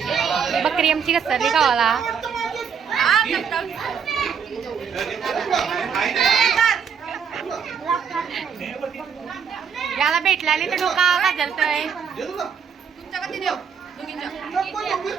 बकरी आमची घसरली गावाला. याला भेटला नाही तर डोका का जलतोय.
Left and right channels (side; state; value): left; quieter; 6.9 dB